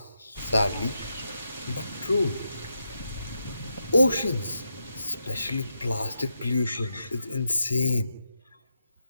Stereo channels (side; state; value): both; inverted; correlation -0.85